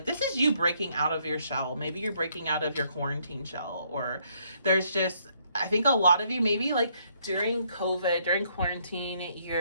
this is you breaking out of your shell. Maybe you're breaking out of your quarantine shell, or there's just, I think a lot of you, maybe like during COVID, during quarantine,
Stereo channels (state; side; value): inverted; both; correlation -0.70